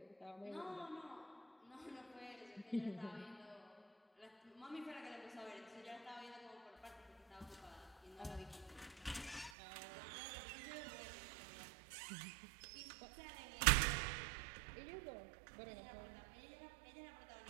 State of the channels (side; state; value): left; drops out; at 9.5 s